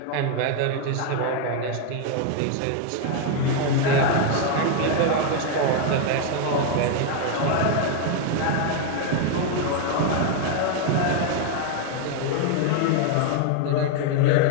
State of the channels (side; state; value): both; different; correlation 0.00